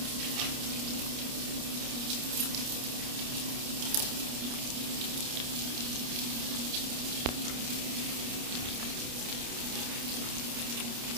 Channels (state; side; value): late; left; 29 ms